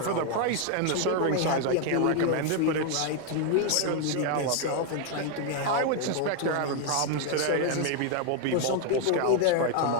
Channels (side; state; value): both; different; correlation 0.00